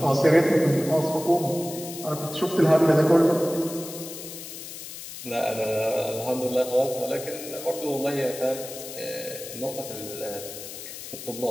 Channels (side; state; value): left; noise; hiss, 11 dB below the sound